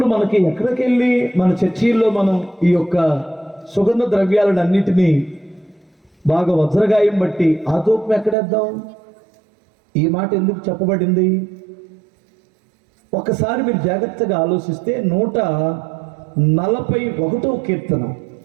మనకి ఎక్కడికి వెళ్ళి మన చర్చీల్లో మనం ఈ యొక్క సుగంధ ద్రవ్యాలను అన్నిటినీ బాగా వజ్రగాయం బట్టి ఆ ధూపం ఎక్కడేద్దాం? ఈ మాట ఎందుకు చెప్పబడింది? ఒకసారి మీరు జాగ్రత్తగా ఆలోచిస్తే 141వ కీర్తన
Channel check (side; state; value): left; drops out; at 8.3 s